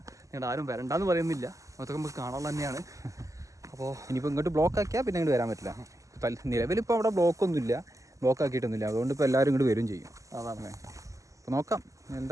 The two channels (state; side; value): late; left; 0.16 ms